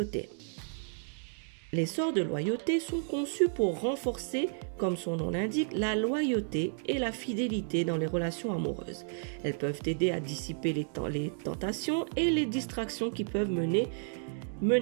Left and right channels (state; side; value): silent; left; 56 dB below the other